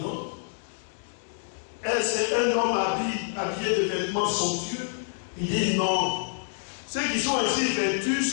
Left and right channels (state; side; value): silent; right; digital silence